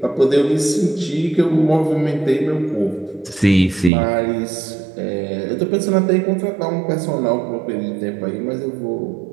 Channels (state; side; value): drops out; left; at 3.9 s